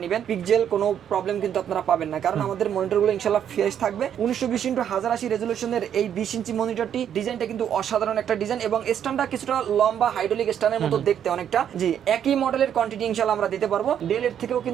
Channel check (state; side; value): quieter; left; 9.3 dB